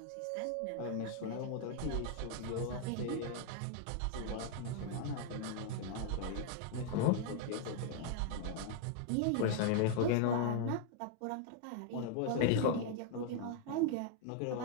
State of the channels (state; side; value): different; both; correlation 0.00